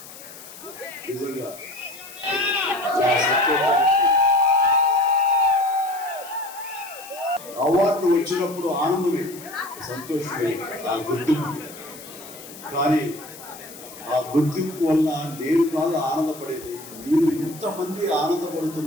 నిజంగా అవార్డు వచ్చినప్పుడు ఆనందమే, సంతోషమే ఆ గుర్తింపు. కానీ ఆ గుర్తింపు వల్ల నేను కాదు ఆనందపడేది, మీరు ఇంతమంది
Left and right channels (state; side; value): noise; left; hiss, 16 dB below the sound